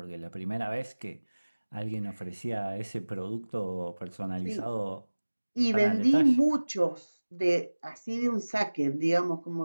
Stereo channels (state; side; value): inverted; both; correlation -1.00